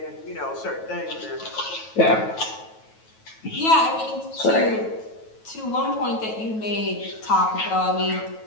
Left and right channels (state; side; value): late; right; 9.2 ms